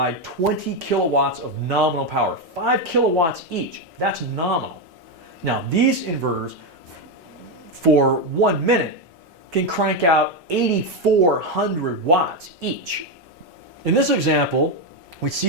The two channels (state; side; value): normal; both; correlation 0.07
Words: 20 kilowatts of nominal power, 5 kilowatts each. That's nominal. Now, these inverters, for 1 minute, can crank out 8,400 watts each. In this example, we